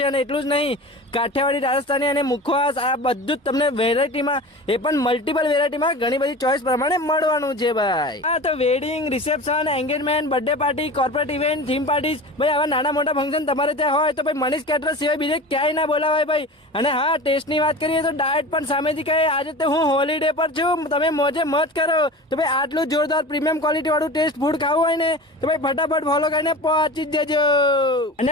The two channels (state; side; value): normal; both; correlation 0.34